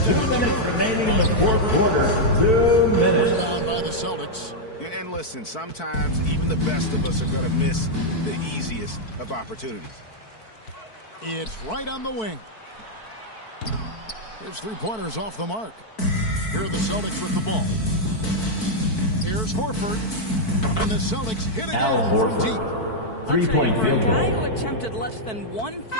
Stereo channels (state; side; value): late; right; 4.5 ms